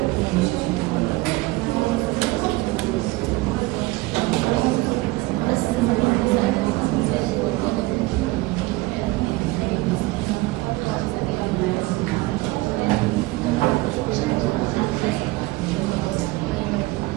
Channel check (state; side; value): quieter; left; 20.9 dB